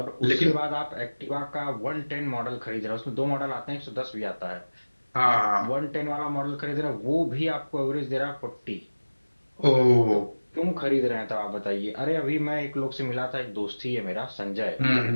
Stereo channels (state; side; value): inverted; both; correlation -1.00